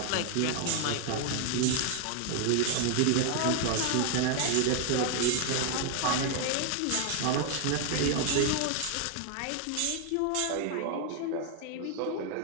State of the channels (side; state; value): both; different; correlation 0.00